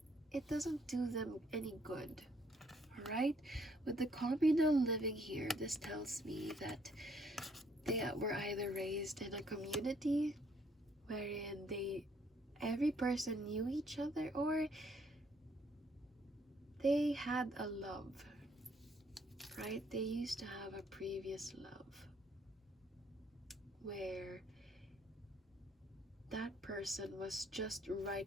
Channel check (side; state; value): both; normal; correlation 0.67